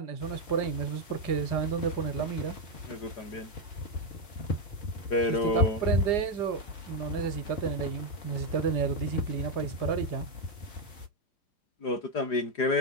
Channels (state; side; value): late; right; 4.8 ms